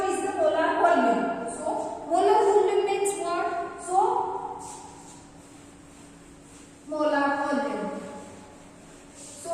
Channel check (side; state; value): both; identical; correlation 1.00